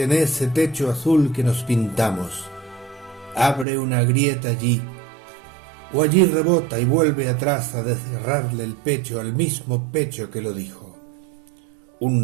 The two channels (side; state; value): left; drops out; at 3.7 s